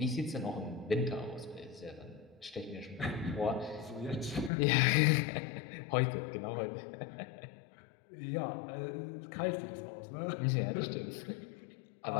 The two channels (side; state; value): right; drops out; at 4.5 s